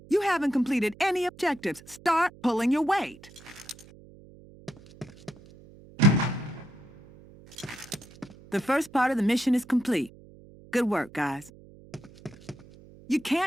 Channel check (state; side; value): noise; right; hum, 22 dB below the sound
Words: haven't completed any objectives. Start pulling your weight. The first part of the mission is complete. Good work, guys. You